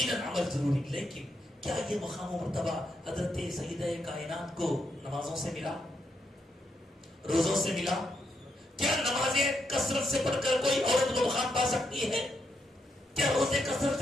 عمل ضروری لیکن کیا یہ مقام و مرتبہ حضرت سیدہ کائنات کو نمازوں سے ملا روزوں سے ملا؟ کیا نمازیں کثرت سے پڑھ کر کوئی عورت وہ مقام پا سکتی ہے؟ کیا روزے کثرت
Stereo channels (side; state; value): both; normal; correlation 0.81